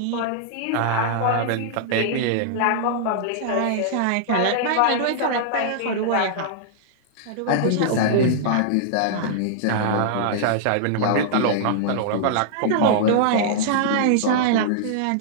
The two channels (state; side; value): different; both; correlation -0.02